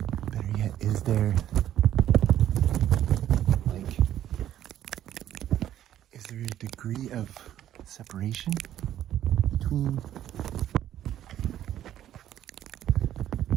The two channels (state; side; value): quieter; left; 11.7 dB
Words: Better yet, is there a degree of separation between